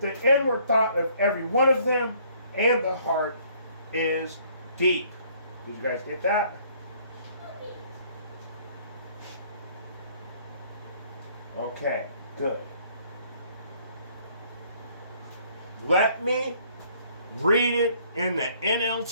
inward thought of every one of them and the heart is deep." Did you guys get that? Okay, good. Let me read it in the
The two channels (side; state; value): both; inverted; correlation -0.62